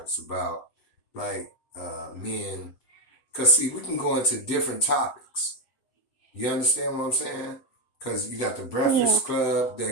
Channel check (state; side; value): late; right; 7.8 ms